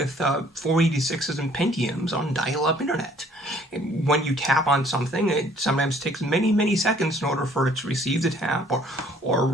486s and Pentiums on dial-up internet. And when you tap on something, it sometimes takes many, many seconds in order for it to receive the tap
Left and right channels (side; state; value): both; normal; correlation 0.59